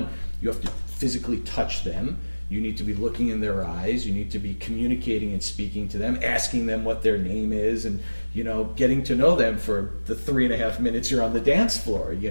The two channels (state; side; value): inverted; both; correlation -1.00